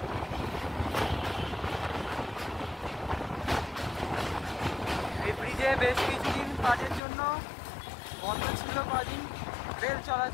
এই ব্রিজে বেশ কিছুদিন কাজের জন্য বন্ধ ছিল কদিন রেল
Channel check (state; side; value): drops out; right; at 7.0 s